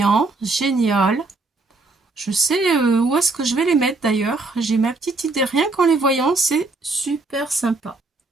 Génial. Je sais où est-ce que je vais les mettre d'ailleurs. J'ai ma petite idée. Rien qu'en les voyant, c'est super sympa.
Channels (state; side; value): quieter; left; 3.5 dB